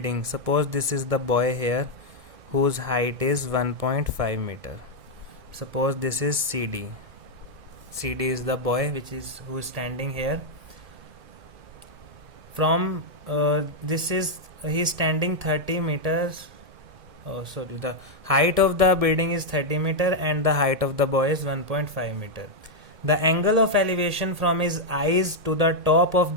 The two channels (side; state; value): left; late; 1.7 ms